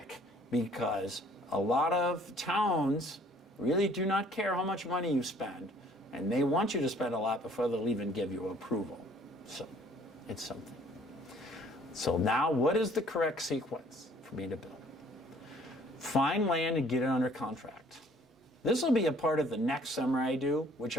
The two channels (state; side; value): normal; both; correlation 0.57